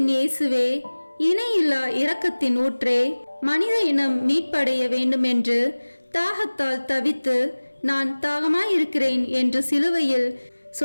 இயேசுவே, இணையில்லா இரக்கத்தின் ஊற்றே, மனித இனம் மீட்படைய வேண்டுமென்று தாகத்தால் தவித்து நான் தாகமாயிருக்கிறேன் என்று சிலுவையில்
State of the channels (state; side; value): inverted; both; correlation -1.00